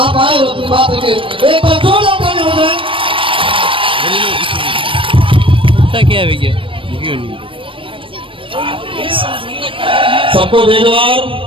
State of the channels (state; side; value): late; left; 0.25 ms